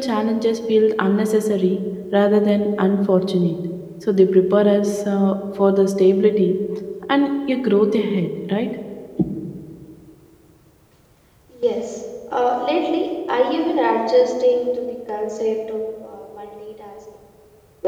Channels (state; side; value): identical; both; correlation 1.00